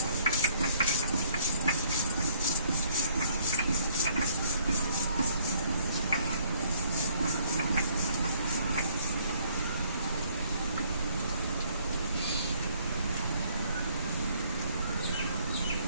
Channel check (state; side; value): inverted; both; correlation -0.63